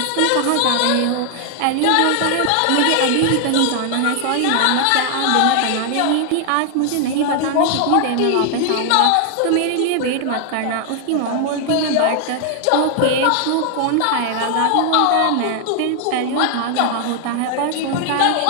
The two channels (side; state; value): both; different; correlation 0.00